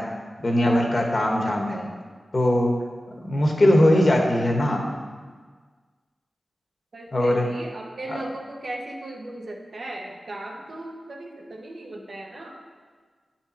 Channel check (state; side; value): normal; both; correlation 0.94